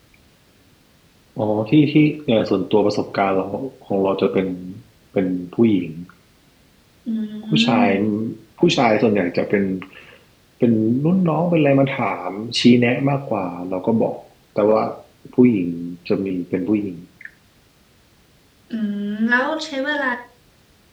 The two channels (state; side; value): identical; both; correlation 1.00